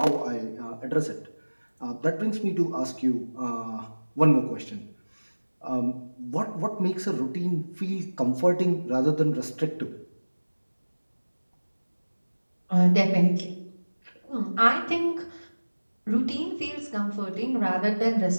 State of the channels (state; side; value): inverted; both; correlation -1.00